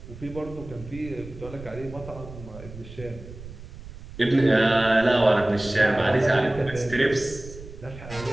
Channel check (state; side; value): noise; right; rumble, 15 dB below the sound